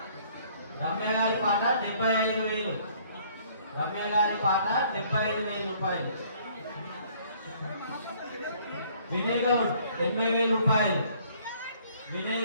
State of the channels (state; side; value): inverted; both; correlation -0.60